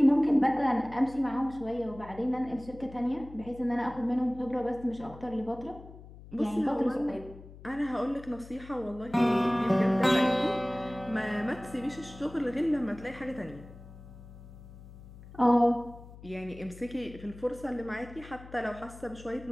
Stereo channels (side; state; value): left; noise; hum, 17 dB below the sound